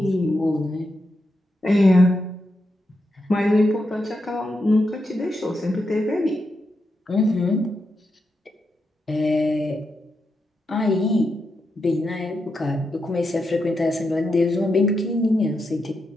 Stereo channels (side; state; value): both; normal; correlation 0.85